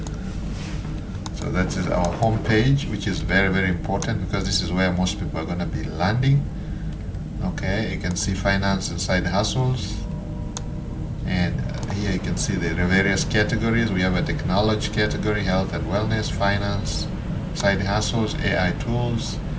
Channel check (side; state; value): both; identical; correlation 1.00